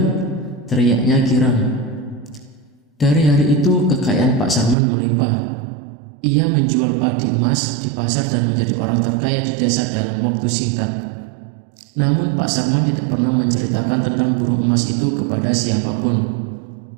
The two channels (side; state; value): left; drops out; at 4.8 s